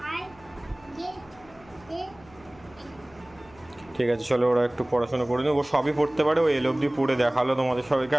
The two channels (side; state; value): left; noise; hum, 25 dB below the sound